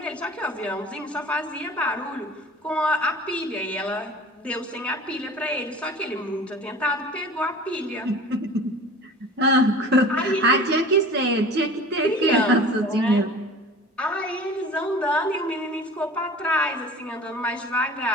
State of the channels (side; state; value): both; normal; correlation 0.41